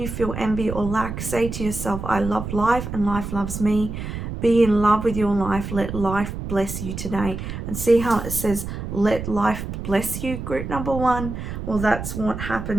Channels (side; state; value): right; noise; rumble, 7 dB below the sound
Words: feel envy or lack, say to yourself, I love life and life loves me. Be in love with your life. Let life bless you today. And see how it says, let life bless you, group number 1? Well, that's what